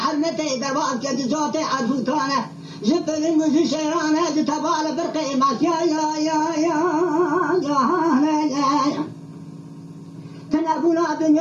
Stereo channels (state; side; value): identical; both; correlation 1.00